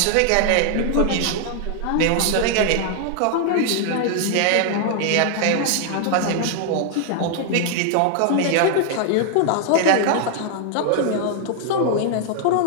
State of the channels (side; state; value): both; different; correlation 0.00